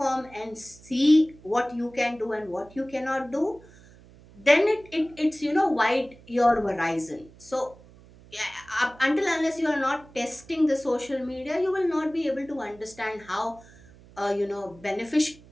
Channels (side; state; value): right; noise; hum, 23 dB below the sound